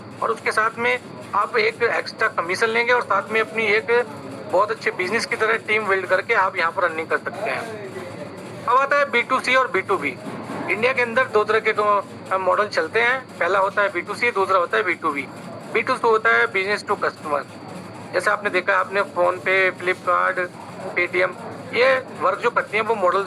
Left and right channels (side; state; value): both; identical; correlation 1.00